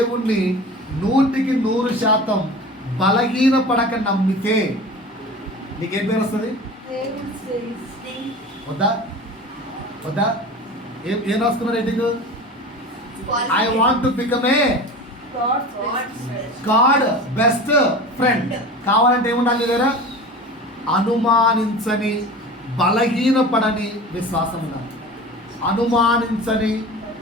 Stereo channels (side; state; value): both; normal; correlation 0.35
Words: 100% బలహీన పడక నమ్మితే నీకేం పేరు వస్తుంది? వద్దా? ఏం రాసుకున్నారు rating? I want to become A God best friend. కావాలంటే ఏముండాలి దగ్గర? అనుమానించని, బలహీనపడని విశ్వాసం ఉండాలి. అనుమానించని,